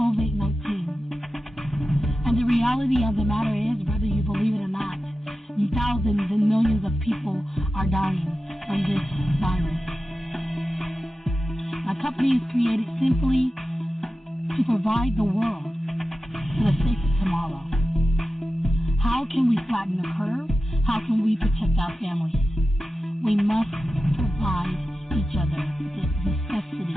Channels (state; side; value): normal; both; correlation 0.93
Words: And the reality of the matter is, whether you believe it or not, thousands and millions of people are dying from this virus. My company is created simply to provide the world with a safer tomorrow. How can we flatten the curve? How can we protect our families? We must provide each other the